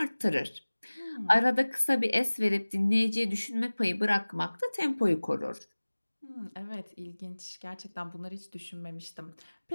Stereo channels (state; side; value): inverted; both; correlation -1.00